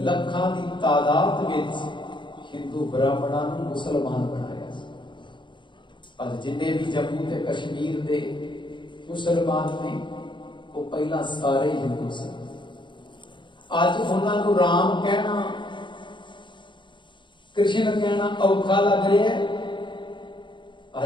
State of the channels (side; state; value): right; late; 0.23 ms